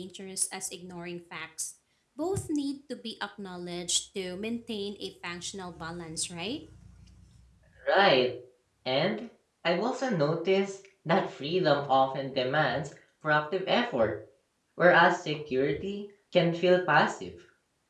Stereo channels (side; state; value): both; identical; correlation 1.00